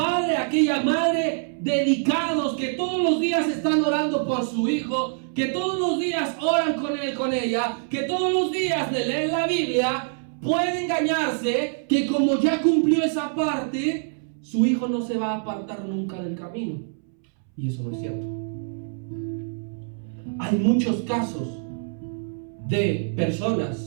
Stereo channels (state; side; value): silent; left; 61 dB below the other